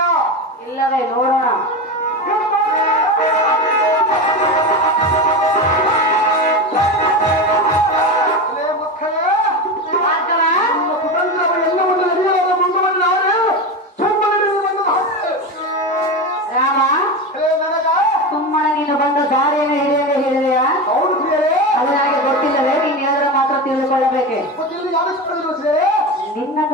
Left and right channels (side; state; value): both; normal; correlation 0.21